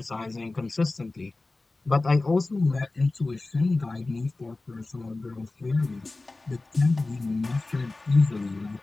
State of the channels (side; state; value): right; quieter; 3.2 dB